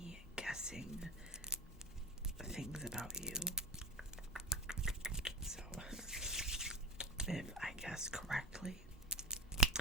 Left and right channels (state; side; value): normal; both; correlation 0.25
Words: guessing things about you. So if I guess correctly,